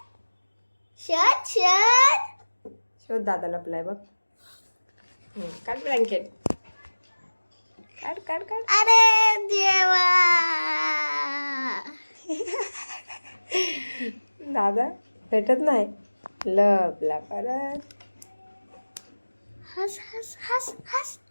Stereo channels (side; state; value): both; inverted; correlation -1.00